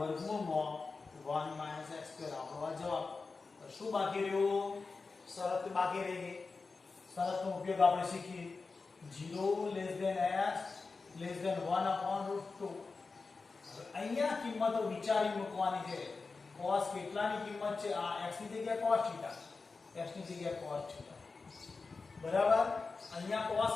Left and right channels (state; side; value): quieter; right; 4.2 dB